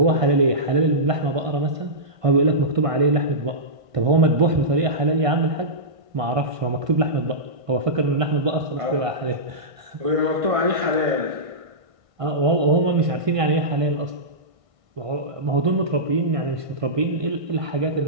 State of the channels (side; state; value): left; late; 1.6 ms